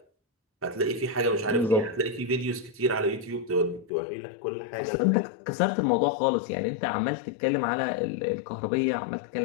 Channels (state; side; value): drops out; right; at 3.9 s